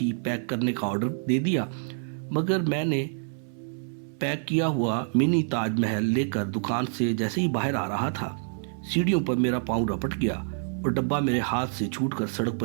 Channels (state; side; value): silent; left; 60 dB below the other